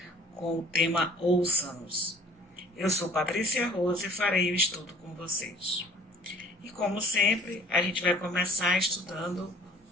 com o tema Ouça-nos. Eu sou Patrícia Rose e farei o estudo com vocês. E como sempre, a gente vai começar estudando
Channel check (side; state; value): both; normal; correlation 0.52